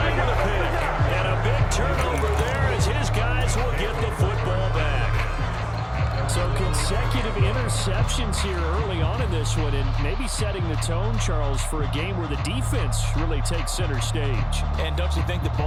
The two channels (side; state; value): both; identical; correlation 1.00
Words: a pick. And a big turnover there as his guys will get the football back. So consecutive interceptions here early on in this one, and maybe setting the tone, Charles, for a game where the defense really takes center stage. And don't you think that